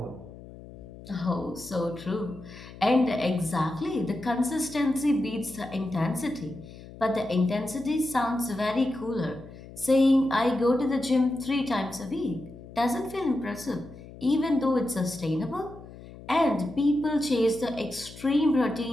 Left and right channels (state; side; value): noise; left; hum, 17 dB below the sound